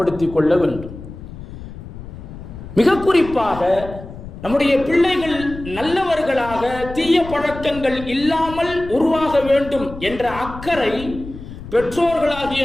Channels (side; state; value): left; noise; rumble, 13 dB below the sound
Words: கொள்ள வேண்டும். மிக குறிப்பாக நம்முடைய பிள்ளைகள் நல்லவர்களாக, தீய பழக்கங்கள் இல்லாமல் உருவாக வேண்டும் என்ற அக்கறை பெற்றோர்களாகிய